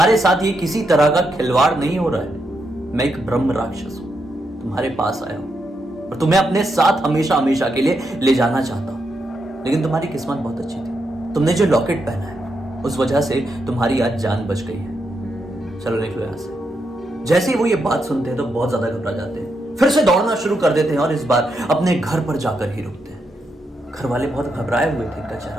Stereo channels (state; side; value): normal; both; correlation 0.82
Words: साथ ये किसी तरह का खिलवाड़ नहीं हो रहा है। मैं एक ब्रह्म राक्षस हूं, तुम्हारे पास आया हूं और तुम्हें अपने साथ हमेशा हमेशा के लिए ले जाना चाहता हूं। लेकिन तुम्हारी किस्मत बहुत अच्छी थी, तुमने जो लॉकेट पहना है उस वजह से तुम्हारी आज जान बच गई है। चलो निकलो यहां से। जैसे ही वो ये बात सुनते हैं तो बहुत ज्यादा घबरा जाते हैं, फिर से दौड़ना शुरू कर देते हैं और इस बार अपने घर पर जाकर ही रुकते हैं। घर वाले बहुत घबराए हुए थे इनका